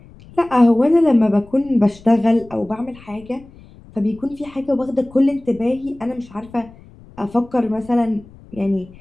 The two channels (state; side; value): noise; left; rumble, 23 dB below the sound